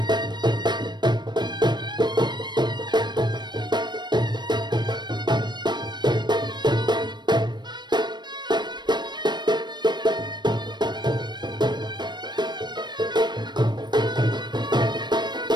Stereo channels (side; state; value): left; late; 0.21 ms